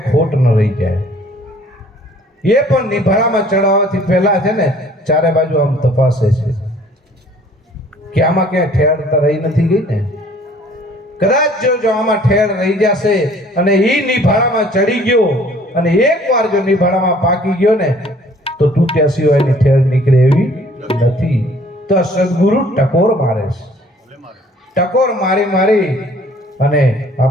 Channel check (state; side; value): normal; both; correlation 0.56